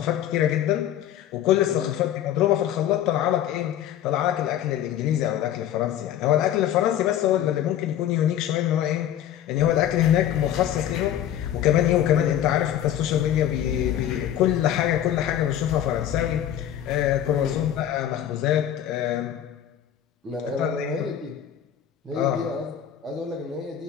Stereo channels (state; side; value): quieter; right; 10.9 dB